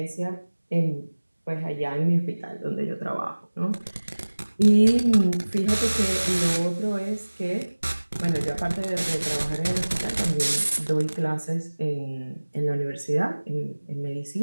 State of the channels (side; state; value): both; inverted; correlation -1.00